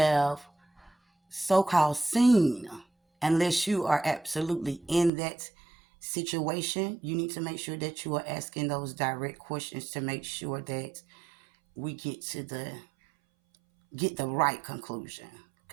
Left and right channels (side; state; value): left; drops out; at 5.1 s